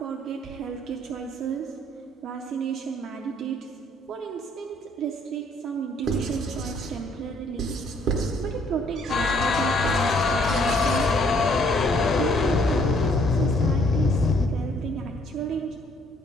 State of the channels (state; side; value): normal; both; correlation 0.64